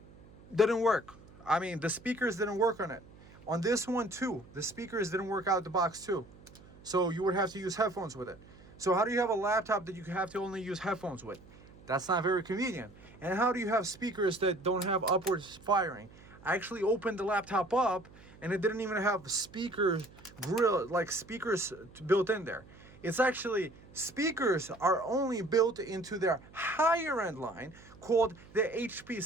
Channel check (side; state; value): right; noise; hum, 22 dB below the sound